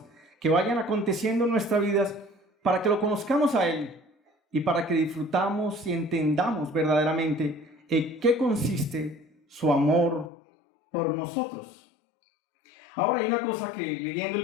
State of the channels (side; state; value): right; drops out; at 10.3 s